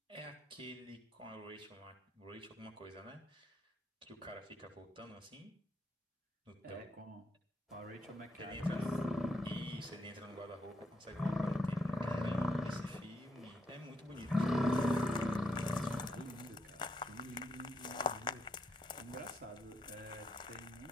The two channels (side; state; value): both; normal; correlation 0.77